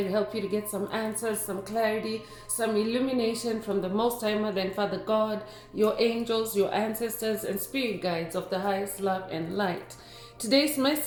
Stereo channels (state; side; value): identical; both; correlation 1.00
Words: to help you to get some answers, some clarity, some illumination from the Most High Mother and Father God, your angels, your ancestors, and spirit guides of the highest love and light. Today's